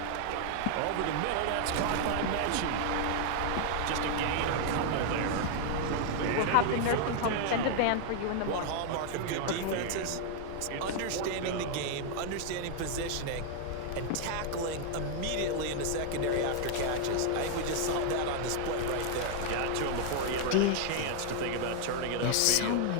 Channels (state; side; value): different; both; correlation 0.00